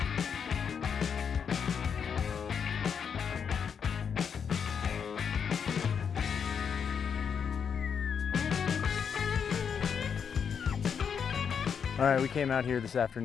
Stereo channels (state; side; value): quieter; right; 7.0 dB